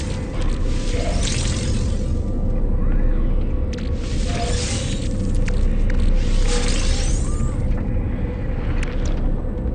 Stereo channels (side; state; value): both; identical; correlation 1.00